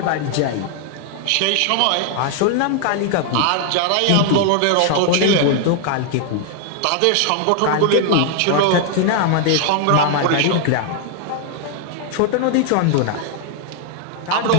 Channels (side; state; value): both; different; correlation 0.00